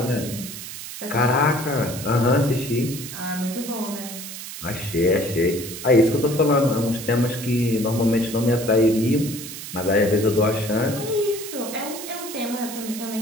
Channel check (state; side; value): noise; right; hiss, 10 dB below the sound